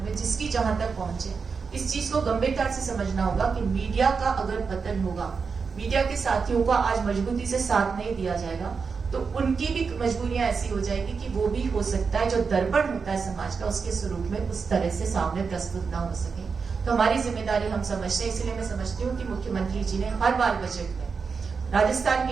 में, जिसकी जहां तक पहुंचे, इस चीज को गंभीरता से समझना होगा कि मीडिया का अगर पतन होगा, मीडिया के साथियों का आज मजबूती से साथ नहीं दिया जाएगा, तो उनकी भी मजबूरियां ऐसी हो जाएगी कि वो भी हो सकता है जो दर्पण होता है समाज का उसके स्वरूप में उस तरह से सामने प्रस्तुत ना हो सके। तो हमारी जिम्मेदारी हम समझते हैं, इसलिए मैं समझती हूँ कि मुख्यमंत्री जी ने हर बार बजट में राजस्थान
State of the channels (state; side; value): quieter; left; 5.3 dB